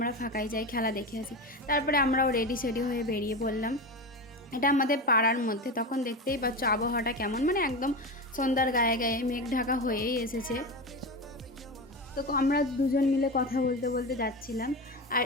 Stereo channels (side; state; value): both; normal; correlation 0.22